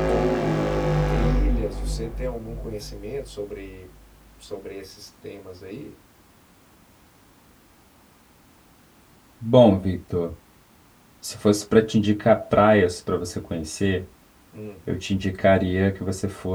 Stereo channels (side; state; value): both; identical; correlation 1.00